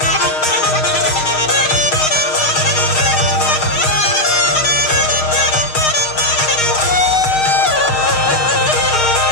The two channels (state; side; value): late; right; 6.5 ms